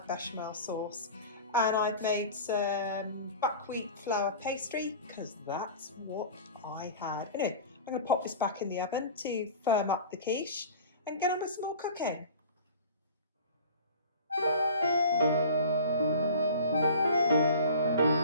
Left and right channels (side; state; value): both; inverted; correlation -0.39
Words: bechamel sauce. And I've made some buckwheat flour pastry because that's what I had. Anyway, I'm going to pop this back in the oven to firm up the quiche and get on with some more cooking.